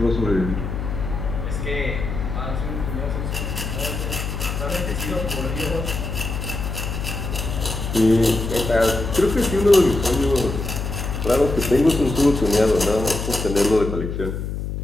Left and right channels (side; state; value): left; noise; hum, 4 dB below the sound